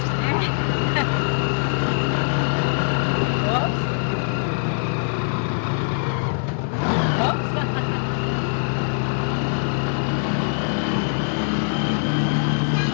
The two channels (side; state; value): right; silent; digital silence